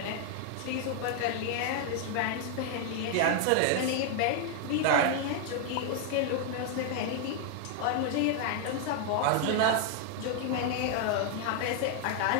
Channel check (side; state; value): both; different; correlation 0.00